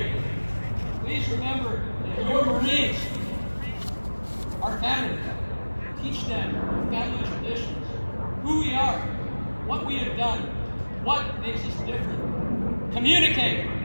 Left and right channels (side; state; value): both; inverted; correlation -1.00